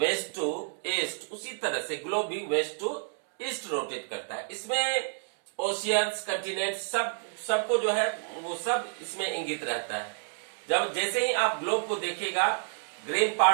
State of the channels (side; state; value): left; silent; 58 dB below the other